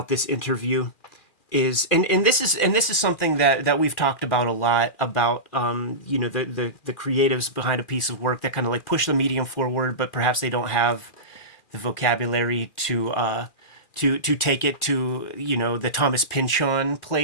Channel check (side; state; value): right; late; 2.4 ms